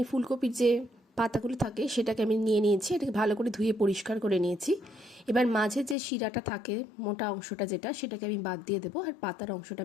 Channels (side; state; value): right; drops out; at 6.0 s